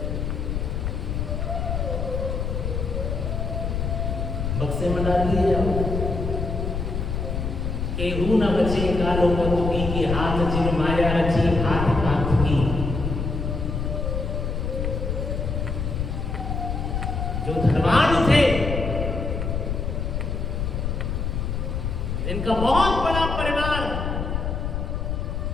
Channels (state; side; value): noise; left; rumble, 2 dB below the sound